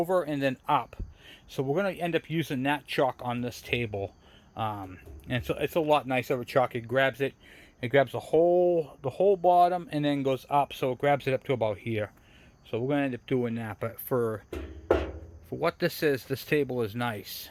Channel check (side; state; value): both; identical; correlation 1.00